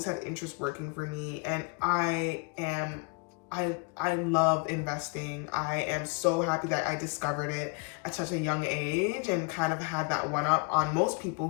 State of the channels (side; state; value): right; quieter; 32.3 dB